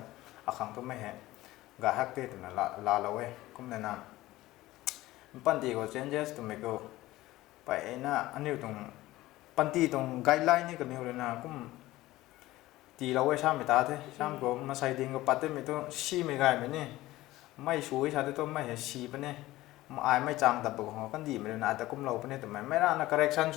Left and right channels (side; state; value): right; quieter; 17.2 dB